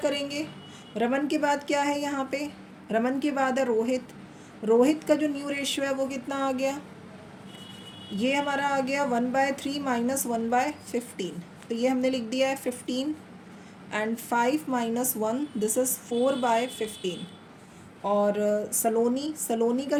रमन के बाद क्या है यहाँ पे? रमन के बाद है रोहित का जो न्यू रेशियो है वो कितना आ गया? ये हमारा आ गया 1/3 - 1/15। तो ये हमने लिख दिया है 15 एंड 5 - 1, दिस इज़ 4/15। और सलोनी का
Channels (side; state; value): both; identical; correlation 1.00